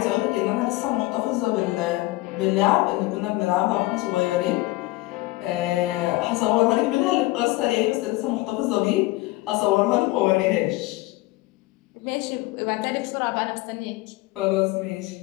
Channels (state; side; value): quieter; right; 20.2 dB